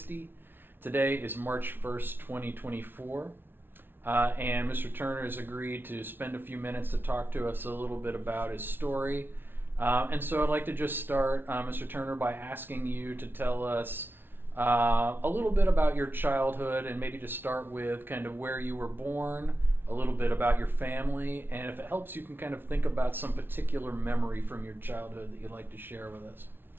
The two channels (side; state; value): left; late; 0.10 ms